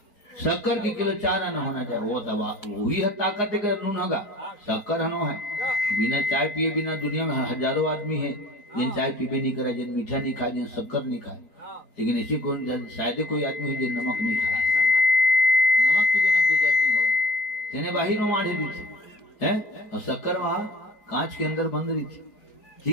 शक्कर के किलो 4 आना होना चाहिए। वो दवा वही है ताकत है नून होगा शक्कर हनो है। बिना चाय पिए बिना दुनिया में हजारों आदमी है जिन चाय पीबे नहीं करा जिन मीठा नहीं खाए जिन शक्कर नहीं खाए। लेकिन ऐसी शायद कोई आदमी है जिन नमक नहीं खाए। नमक के बिना गुजर नहीं हो तेने बाहर में माढ़े दी थी है और शक्कर वहां कांच के अंदर बंद रही थी।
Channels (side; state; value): right; late; 4.8 ms